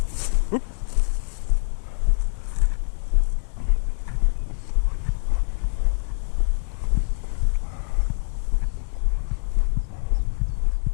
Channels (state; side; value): silent; right; 62 dB below the other